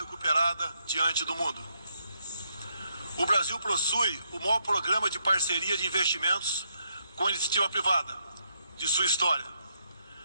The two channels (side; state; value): both; inverted; correlation -0.77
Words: diante do mundo. O Brasil possui o maior programa de parceria de investimentos com a iniciativa privada de sua história.